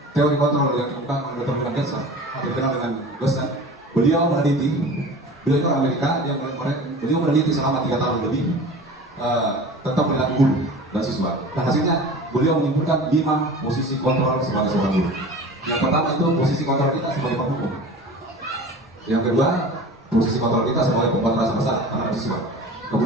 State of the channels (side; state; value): both; normal; correlation 0.38